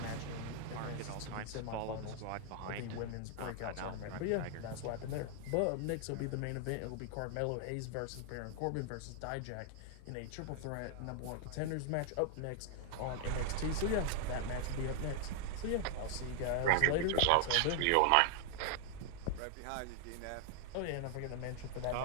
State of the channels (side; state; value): both; different; correlation 0.00